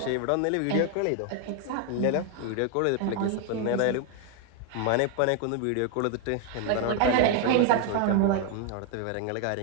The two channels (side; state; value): both; different; correlation 0.01